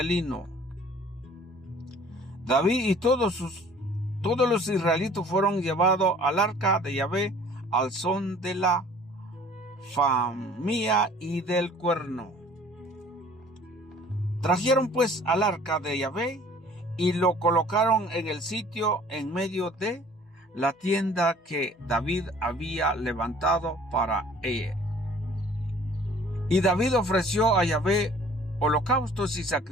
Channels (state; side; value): normal; both; correlation 0.52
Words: lino. David y todos los israelitas fueron llevados al arca de Yahvé al son de la famía y del cuerno. Trajeron pues al arca de Yahvé y lo colocaron en el sitio en medio de la tienda que David había levantado para ella. Y David ofreció a Yahvé holocaustos y